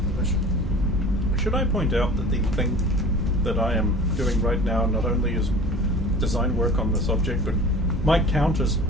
the mission. Should I point out that the thing that I am doing right now not only is design work on this object, but might count as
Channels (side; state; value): both; normal; correlation 0.42